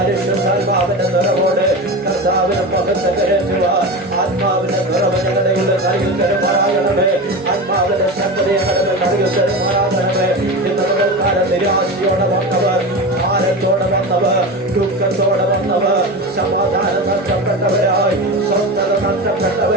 നിറവോടെ കർത്താവിനെ മുഖത്ത് കയറ്റുവാൻ ആത്മാവിന്റെ നിറവ് ഞങ്ങളുടെ നൽകി തരുമാറാകണമേ ആത്മാവിന്റെ ശക്തി ഞങ്ങളുടെ നൽകി തരുമാറാകണമേ ഇന്ന് പകൽക്കാലം നിരാശയോടെ വന്നവർ ഭാരത്തോടെ വന്നവർ ദുഃഖത്തോടെ വന്നവർ സമാധാനം നഷ്ടപ്പെട്ടവരായി സ്വസ്ഥത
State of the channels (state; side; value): normal; both; correlation 0.25